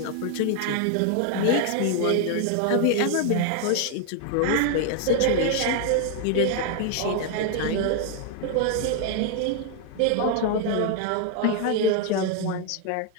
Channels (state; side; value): different; both; correlation 0.00